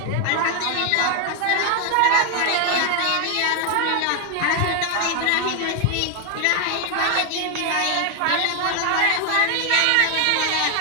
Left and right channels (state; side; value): different; both; correlation 0.00